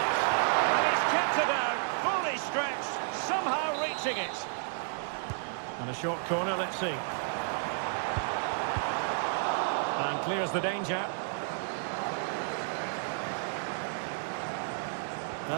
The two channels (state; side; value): silent; left; digital silence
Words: and he's kept it out, fully stretched, somehow reaching it. And a short corner, let's see. And clears the danger.